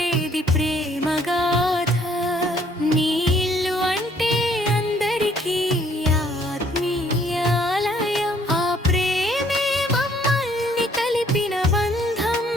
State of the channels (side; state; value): both; normal; correlation 0.63